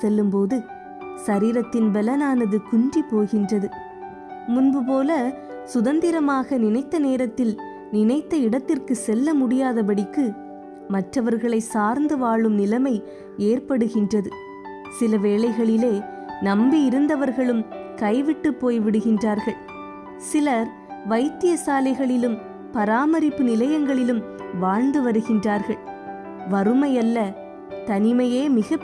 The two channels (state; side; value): identical; both; correlation 1.00